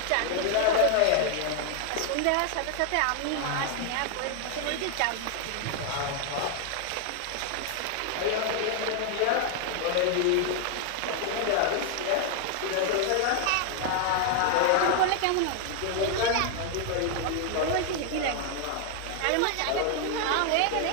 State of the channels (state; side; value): different; both; correlation 0.00